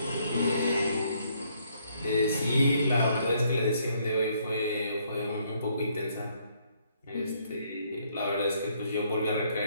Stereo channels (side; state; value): both; inverted; correlation -0.69